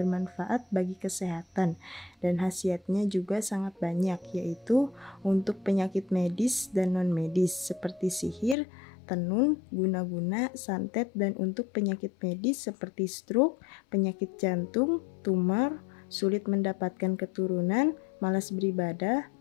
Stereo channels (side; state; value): right; drops out; at 8.6 s